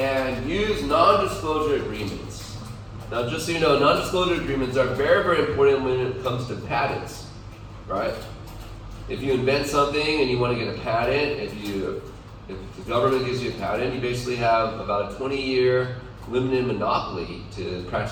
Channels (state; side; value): identical; both; correlation 1.00